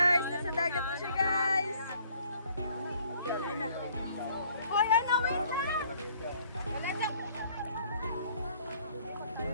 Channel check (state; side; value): inverted; both; correlation -0.60